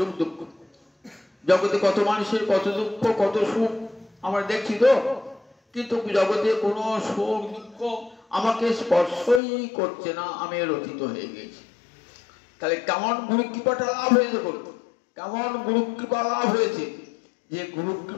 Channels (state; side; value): drops out; right; at 9.4 s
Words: দুঃখ, জগতে কত মানুষের কত দুঃখ কত সুখ আমরা দেখছি তো, কিন্তু জগতে কোনো সুখ দুঃখ আমাকে স্পর্শই করছে না, আমি রচিত হয়ে গেছি। তাহলে কেমন গুরু কৃপাটা লাভ হয়েছে? কেমন গুরু কৃপা লাভ হয়েছে? যে গুরু